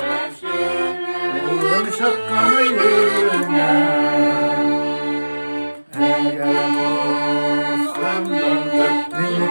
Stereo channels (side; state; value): both; inverted; correlation -1.00